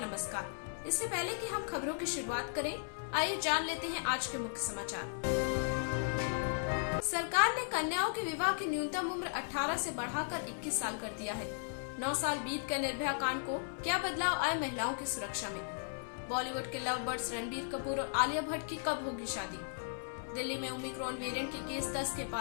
इससे पहले कि हम खबरों की शुरुआत करें, आइए जान लेते हैं आज के मुख्य समाचार। सरकार ने कन्याओं के विवाह की न्यूनतम उम्र 18 से बढ़ाकर 21 साल कर दिया है। 9 साल बीत कर निर्भया कांड को क्या बदलाव आए महिलाओं की सुरक्षा में। बॉलीवुड के लव बर्ड्स रणबीर कपूर और आलिया भट्ट की कब होगी शादी। दिल्ली में ओमिक्रॉन वेरिएंट के केस 10 के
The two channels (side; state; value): right; silent; 54 dB below the other